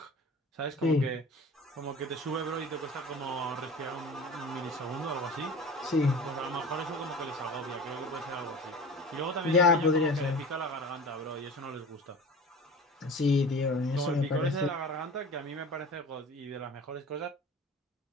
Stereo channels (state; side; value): normal; both; correlation 0.37